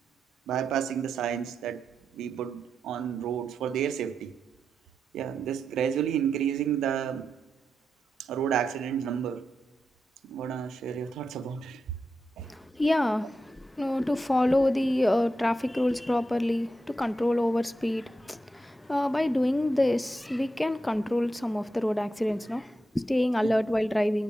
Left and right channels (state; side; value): normal; both; correlation 0.87